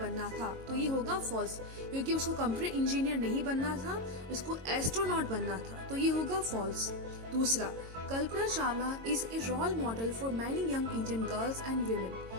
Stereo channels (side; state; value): left; late; 22 ms